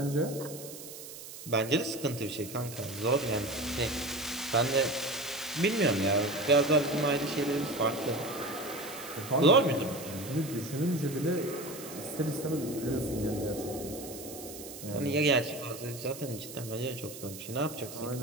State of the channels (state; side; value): noise; right; hiss, 13 dB below the sound